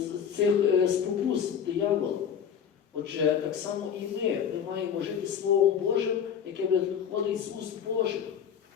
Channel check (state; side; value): quieter; right; 8.0 dB